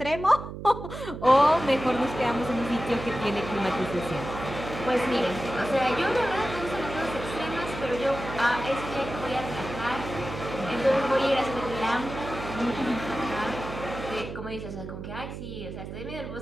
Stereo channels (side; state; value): right; noise; hum, 9 dB below the sound